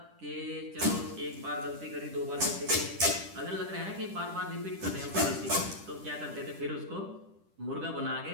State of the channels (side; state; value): left; late; 10 ms